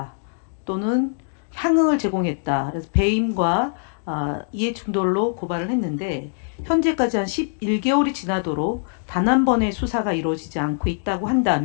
또는 향응을 제공했다. 그래서 배임과 이해충돌로 고발을 했는데 현재까지 한 11개월이 지나도록 단 한 번의 수사가 이루어지지 않고 있다고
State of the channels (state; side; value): silent; right; digital silence